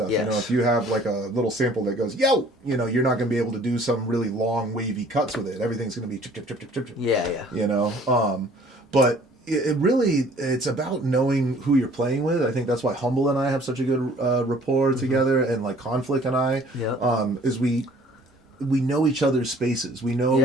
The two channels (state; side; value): normal; both; correlation 0.54